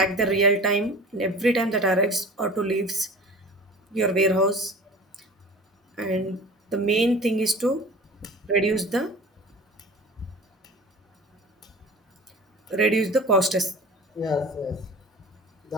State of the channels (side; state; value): both; normal; correlation 0.39